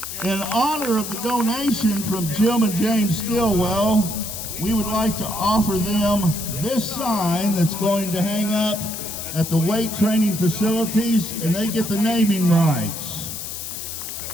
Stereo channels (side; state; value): left; noise; hiss, 7 dB below the sound